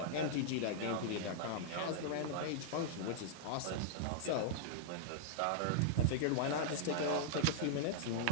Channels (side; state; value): both; different; correlation -0.01